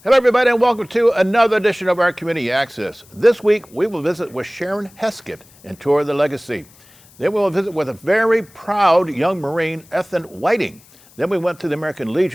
Hello, everybody, and welcome to another edition of our Community Access. This week, we will visit with Sharon Heskitt and tour the legacy. Then we will visit with a very proud young Marine, Ethan Whiting. Then we went to the American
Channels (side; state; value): left; noise; hiss, 27 dB below the sound